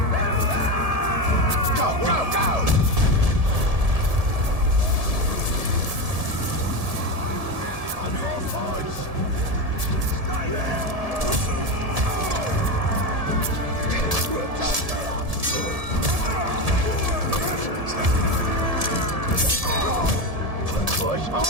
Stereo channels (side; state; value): left; late; 1.7 ms